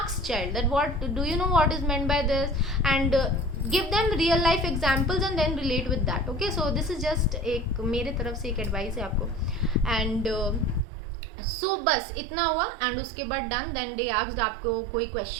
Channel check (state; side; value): drops out; left; at 10.9 s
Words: child that what do you know what is meant by this, and give them real life examples and then relate with that. Okay, so this is just एक मेरे तरफ से एक advice है आपको। And so बस इतना हुआ एंड उसके बाद डन। देन दे आस्क्ड आपको कोई